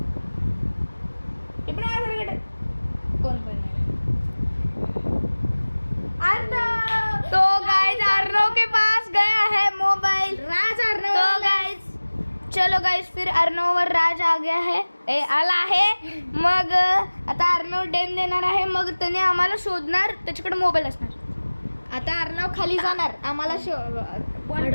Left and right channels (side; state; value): both; inverted; correlation -1.00